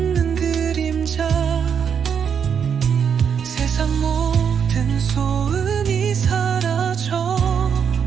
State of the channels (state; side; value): quieter; left; 7.3 dB